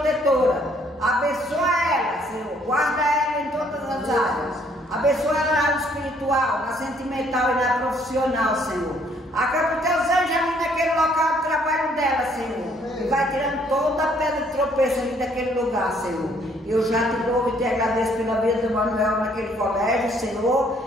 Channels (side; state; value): both; normal; correlation 0.64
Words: Abençoa ela, Senhor. Guarda ela em todas as áreas. Abençoa ela na área espiritual, na sentimental e na profissional, Senhor. Acaba teus anjos ali naquele local de trabalho dela, Senhor. E vai tirando toda a pedra de tropeço ali daquele lugar, Senhor. Eu já te louvo e te agradeço pela vida do Manuel naquele colégio,